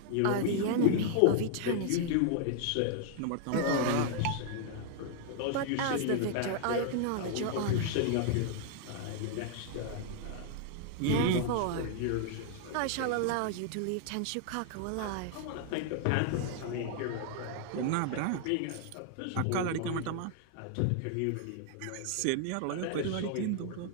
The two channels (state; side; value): different; both; correlation 0.00